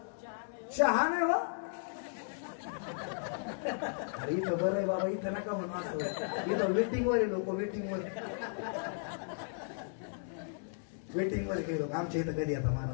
चहा नाही. हो अरे इथं बरं आहे बाबा, इथं नका म्हणून असं. इथं वेटिंग वर आहे लोक, वेटिंग वर काही लोक. आमच्या इथं कधी येतात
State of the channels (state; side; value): silent; right; digital silence